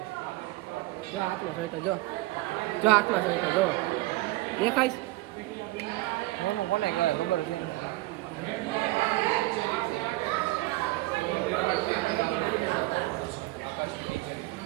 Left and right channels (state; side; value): quieter; left; 19.5 dB